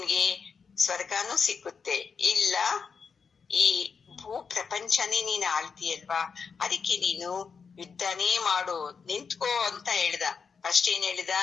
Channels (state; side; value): quieter; right; 5.7 dB